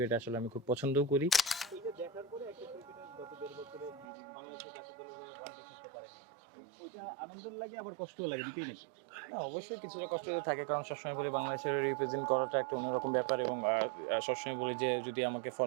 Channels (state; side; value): drops out; left; at 4.0 s